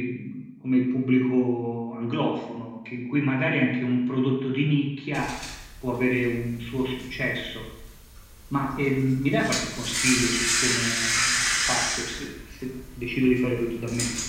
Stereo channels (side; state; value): both; identical; correlation 1.00